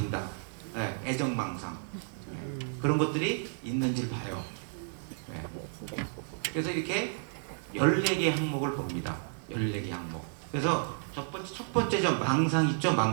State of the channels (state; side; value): silent; left; digital silence